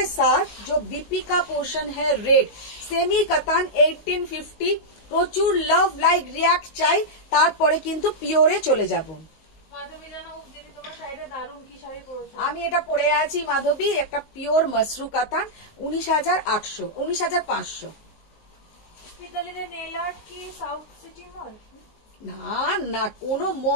साथ जो बीपी का पोर्शन है रेड, सेमी कतान 1850, প্রচুর লাভ লাইক রিয়াক্ট চাই, তারপরে কিন্তু পিওরে চলে যাব। মাধবী জানা দিদি তোমার শাড়িটা দারুণ, কি শাড়ি পরেছো? আমি এটা পরে আছি মাধবী, একটা পিওর মসরু কাতান, 19,800 19,500। পিতালিদের নেল আর্ট কি সাউথ সিটি মল? না না কোনো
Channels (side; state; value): right; late; 19 ms